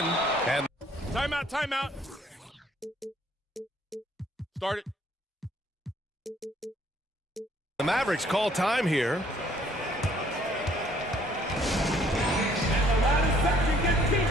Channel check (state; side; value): normal; both; correlation 0.62